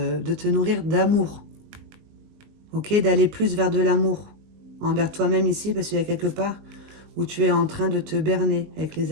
te nourrir d'amour. Ok? D'aller plus vers de l'amour. Envers toi-même ici, parce qu'il y a quelque part où tu es en train de te berner avec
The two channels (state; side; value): late; left; 20 ms